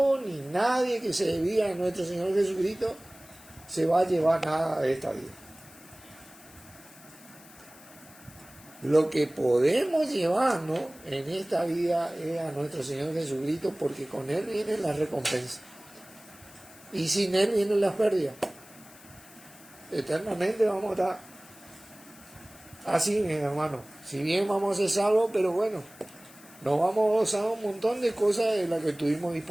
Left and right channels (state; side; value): noise; left; hiss, 22 dB below the sound